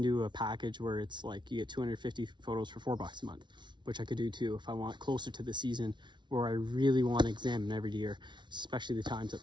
do a package where it's like you get 250 photos for $4 a month, which I could do too if I want closer to the season where I really want to examine every deer, especially the times that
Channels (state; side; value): late; left; 0.23 ms